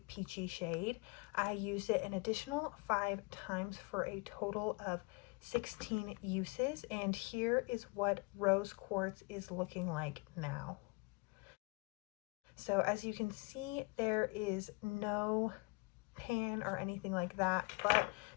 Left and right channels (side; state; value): right; quieter; 28.3 dB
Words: peachy shade. I used it an additional 5 times for a total of 16 uses, and here is what Rose Quartz is looking like now. So as you can see, there is no pan or anything like that, but